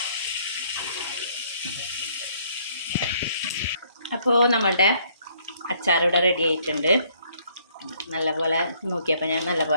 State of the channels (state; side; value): inverted; both; correlation -0.65